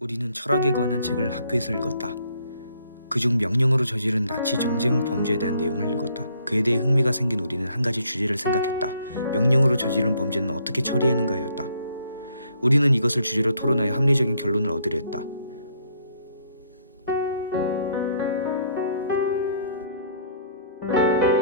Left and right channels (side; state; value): both; inverted; correlation -0.66